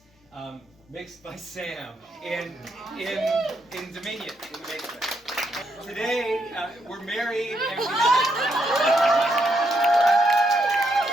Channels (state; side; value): normal; both; correlation 0.77